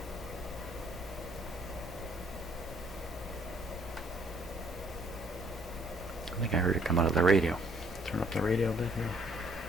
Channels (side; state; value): both; normal; correlation 0.64